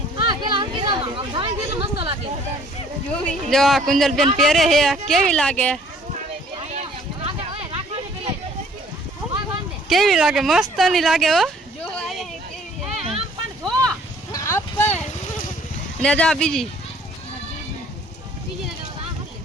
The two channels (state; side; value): normal; both; correlation 0.57